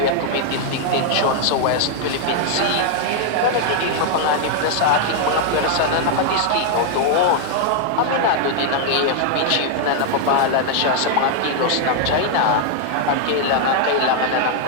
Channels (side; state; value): both; different; correlation 0.00